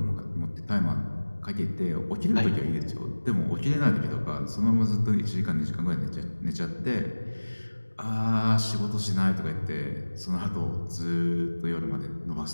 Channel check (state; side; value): inverted; both; correlation -1.00